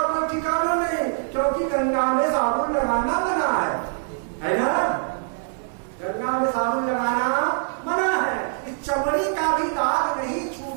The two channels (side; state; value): left; silent; digital silence